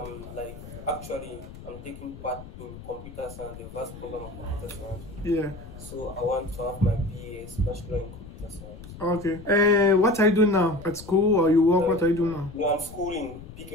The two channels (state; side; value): noise; left; rumble, 15 dB below the sound